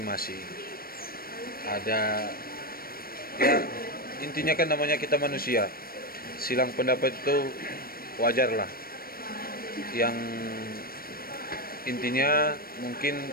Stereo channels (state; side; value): late; right; 0.43 ms